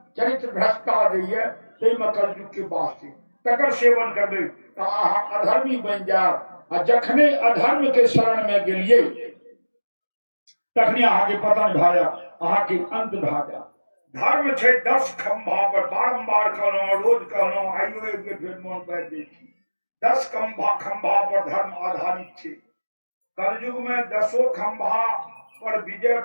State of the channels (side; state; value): both; inverted; correlation -1.00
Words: चरित्र भ्रष्टा दैये, ताहिमे कलयुग के वास छै। तकर सेवन करबै तऽ अहाँ अधर्मी बनि जायब। आ जखने अधर्म के शरण में गेलिए तखने अहाँ के पतन भए जायत, अहाँ के अंत भए जायत। धर्म छै 10 खंभा पर, बारंबार कहलहुँ, रोज कहलहुँ, आइयो एक बेर फेर मोन पारि दै छी। 10 खंभा पर धर्म आधारित छै। कलयुग में 10 खंभा पर विजय